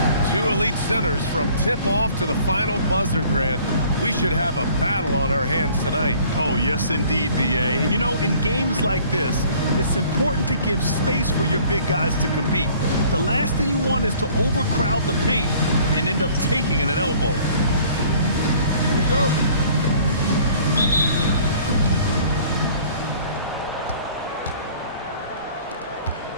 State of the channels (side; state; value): both; inverted; correlation -0.54